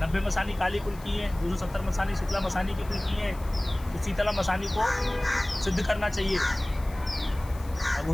90 मसानी काली कुल की हैं, 270 मसानी शीतला मसानी की कुल की हैं। तो शीतला मसानी को सिद्ध करना चाहिए,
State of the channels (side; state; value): left; noise; hiss, 21 dB below the sound